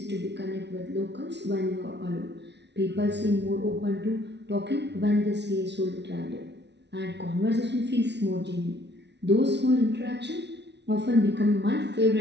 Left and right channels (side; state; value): left; late; 0.50 ms